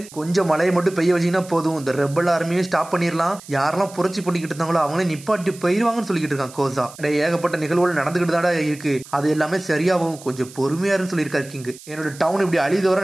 கொஞ்சம் மழையை மட்டும் பெய்ய வச்சீங்கன்னா போதும், இந்த ரெபல் ஆர்மியை ஸ்டாப் பண்ணிடலாம், யாரெல்லாம் புரட்சி பண்ணிக்கிட்டு இருந்தாங்களோ அவங்களே நிப்பாட்டி போயிருவாங்கன்னு சொல்லிக்கிட்டு இருக்கான் கோசா. ஏகப்பட்ட நிகழ்வுகள் நடந்துகிட்டு தாடா இருக்கு, அது எல்லாமே சரியாகும், கொஞ்சம் பொறுமையாருன்னு சொல்லியிருக்காரு கிங்கு. என்னோட டவுன் இப்படி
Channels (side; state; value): right; noise; hiss, 19 dB below the sound